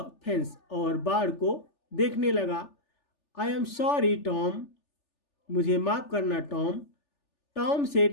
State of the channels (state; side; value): late; right; 3.4 ms